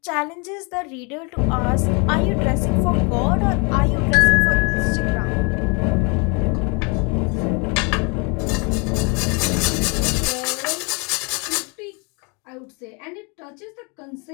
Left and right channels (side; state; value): right; quieter; 32.2 dB